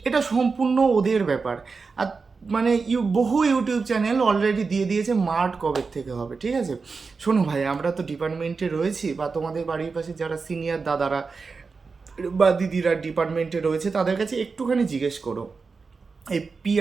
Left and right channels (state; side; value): quieter; left; 4.7 dB